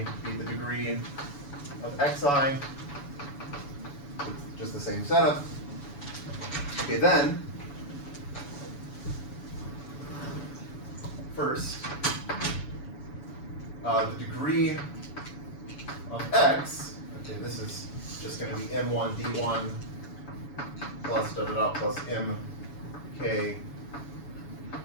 be the degree of xi, just the same setup. Okay, then, first, the degree of x, okay, this is just going to be m1 d1 plus da da da plus mk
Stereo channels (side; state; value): right; late; 7.0 ms